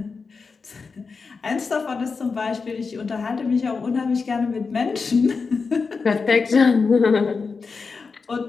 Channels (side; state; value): right; quieter; 4.8 dB